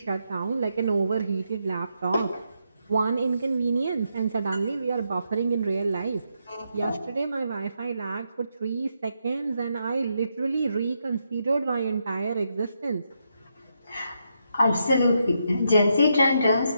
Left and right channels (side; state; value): both; inverted; correlation -0.81